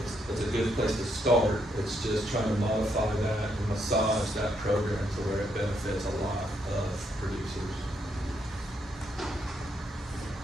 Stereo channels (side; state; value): both; normal; correlation 0.76